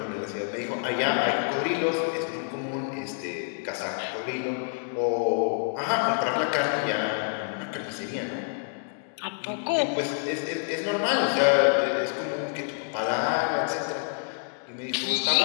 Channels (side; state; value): right; silent; digital silence